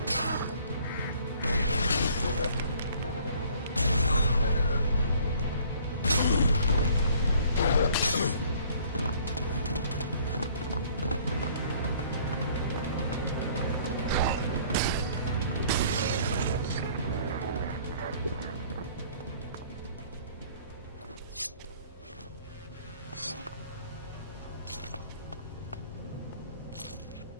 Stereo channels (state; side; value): inverted; both; correlation -0.56